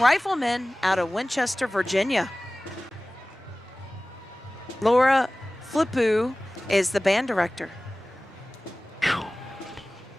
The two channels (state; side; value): normal; both; correlation 0.98